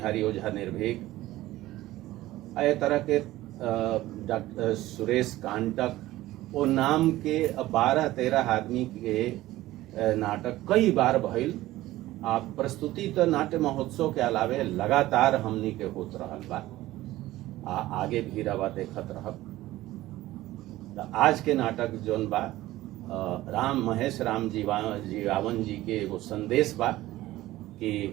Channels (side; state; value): left; quieter; 16.4 dB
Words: ओझा निर्भीक, ए तरह के डॉक्टर सुरेश कांटक, वो नाम के 12-13 आदमी के नाटक कई बार भइल। आप प्रस्तुति तो नाट्य महोत्सव के अलावे लगातार हमनी के होत रहल बा, आगे भी रवा देखत रहब। आज के नाटक जोन बा राम महेश राम जीवावन जी के एगो संदेश बा कि